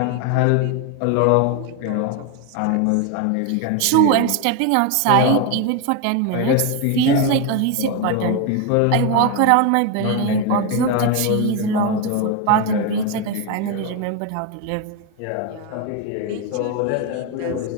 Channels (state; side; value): different; both; correlation 0.02